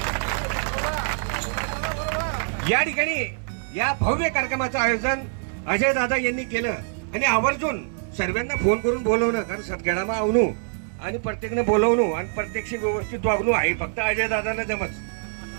या ठिकाणी या भव्य कार्यक्रमाचं आयोजन अजय दादा यांनी केलं आणि आवर्जून सर्वांना फोन करून बोलवणं, कारण सतखेडामा आवणू आणि प्रत्येकने बोलवणू आणि प्रत्यक्ष व्यवस्थित वागणू आहे फक्त अजय दादांना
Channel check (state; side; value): silent; left; 62 dB below the other